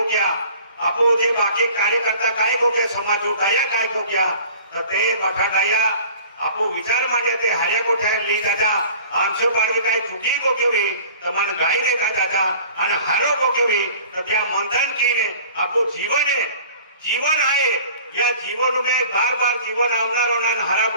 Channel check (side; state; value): both; inverted; correlation -0.46